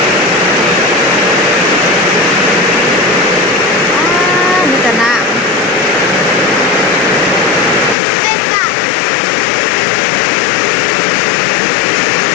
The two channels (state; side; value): drops out; right; at 8.0 s